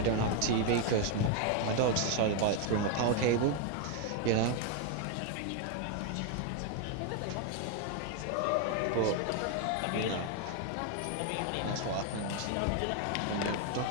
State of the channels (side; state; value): both; different; correlation 0.01